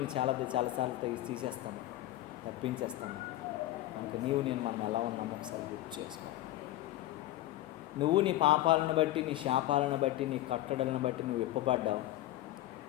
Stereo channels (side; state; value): right; quieter; 15.3 dB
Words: చాలాసార్లు తీసేస్తాము, తప్పించేస్తాము. కనుక నేను మనం ఎలా ఉన్నామో ఒకసారి గుర్తు చేసుకో. నువ్వు నీ పాపాలను బట్టి, నీ శాపాలను బట్టి, నీ కట్టడలను బట్టి నువ్వు విప్పబడ్డావు.